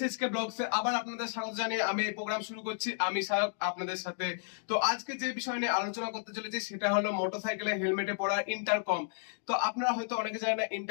ব্লগসে আবার আপনাদের স্বাগত জানিয়ে আমি এই প্রোগ্রাম শুরু করছি। আমি সায়ক আপনাদের সাথে। তো আজকে যে বিষয় নিয়ে আলোচনা করতে চলেছি সেটা হলো মোটরসাইকেলে হেলমেটে পড়া ইন্টারকম। তো আপনারা হয়তো অনেকে জানেন না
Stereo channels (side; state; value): right; silent; digital silence